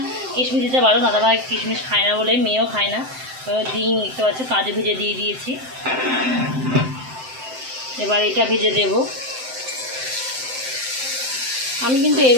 কিশমিশ দিতে পারো, দাদাভাই কিশমিশ খায় না বলে মেয়েও খায় না। ডিম দেখতে পাচ্ছ কাজু ভেজে দিয়ে দিয়েছি, এবার এটা ভেজে দেব। আমি কিন্তু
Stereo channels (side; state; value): left; late; 7.8 ms